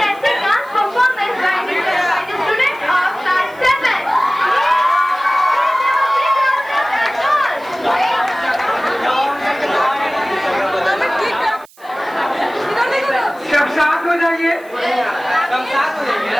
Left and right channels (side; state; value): right; noise; hiss, 27 dB below the sound